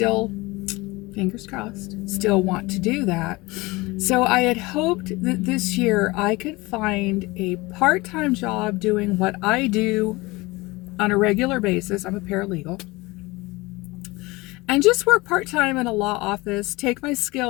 fingers crossed, still want to do that. So I had hoped that this year I could find a part-time job doing what I do on a regular basis. I'm a paralegal. And just work part-time in a law office, take my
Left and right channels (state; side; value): quieter; right; 22.5 dB